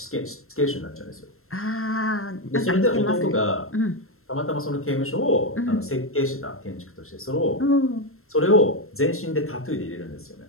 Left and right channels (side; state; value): right; late; 0.62 ms